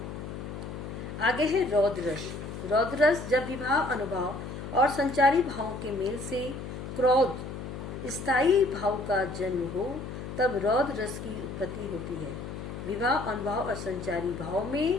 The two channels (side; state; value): left; noise; hum, 8 dB below the sound